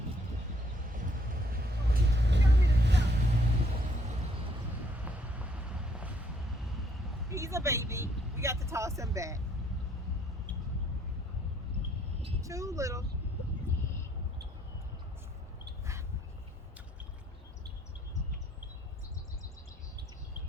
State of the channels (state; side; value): normal; both; correlation 0.67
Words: He's a baby. We got to toss him back. Too little.